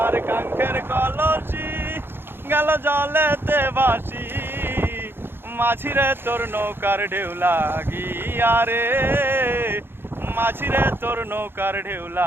কাঙ্ক্ষের কলসি গেল জলেতে ভাসি, মাঝিরে তোর নৌকার ঢেউ লাগিয়া রে, মাঝিরে তোর নৌকার ঢেউ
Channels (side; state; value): left; late; 0.10 ms